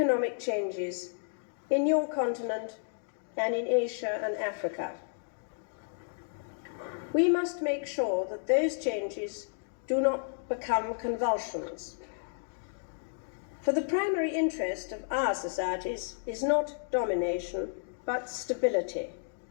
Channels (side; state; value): right; silent; digital silence